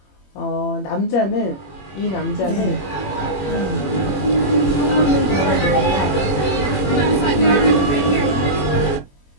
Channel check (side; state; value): right; late; 21 ms